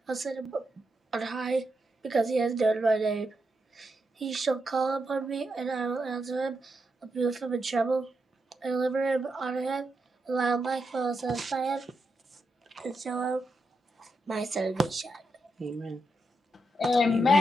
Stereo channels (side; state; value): both; normal; correlation 0.84